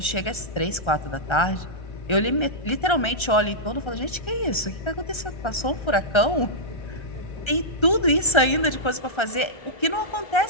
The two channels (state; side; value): late; right; 1.3 ms